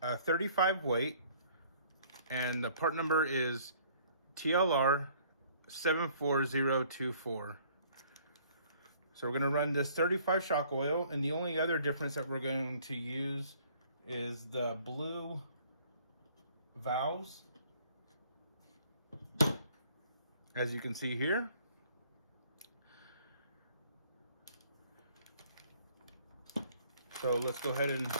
35 weight, and the part number is TLR 74024. So we're gonna run this 35 shock oil, and the only other difference that we're going to use is the blue valves, as you can see here. So let's go ahead and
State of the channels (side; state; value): both; inverted; correlation -0.58